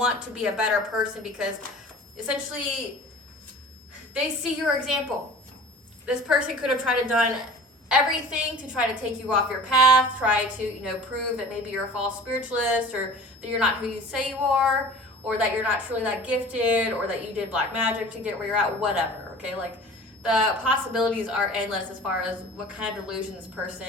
to be a better person because essentially they see your example. This person could have tried to done everything to try to take you off your path, try to, prove that maybe you're a false spiritualist, or that you're not who you say you are, or that you're not truly that gifted, or that you did black magic to get where you're at, whatever, okay? Like, the possibilities are endless as far as what kind of delusion this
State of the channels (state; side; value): normal; both; correlation 0.43